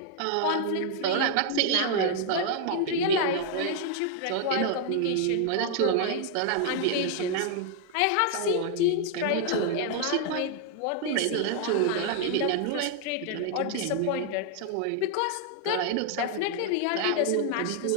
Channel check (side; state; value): both; different; correlation 0.00